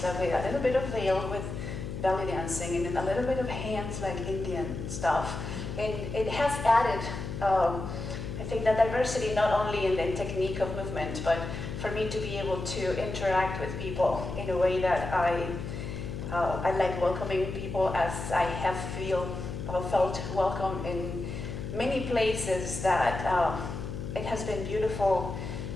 like a little bit of veil with belly dancing and then a little bit of hands like Indian stuff. And it has added, I think, that diversity not only in the technique of movement, but for me to be able to interact with people in a way that I like welcoming people as I have felt welcome in many places that it has been beautiful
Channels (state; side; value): noise; left; hum, 6 dB below the sound